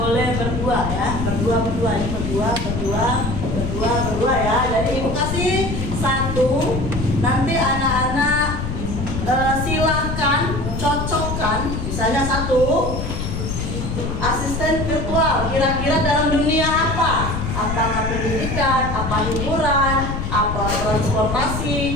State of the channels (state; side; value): noise; left; rumble, 4 dB below the sound